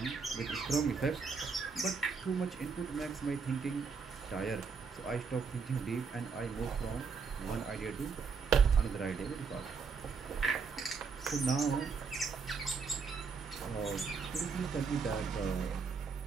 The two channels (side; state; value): left; quieter; 5.4 dB